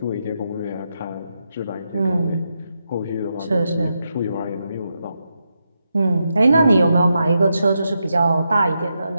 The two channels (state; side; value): inverted; both; correlation -0.85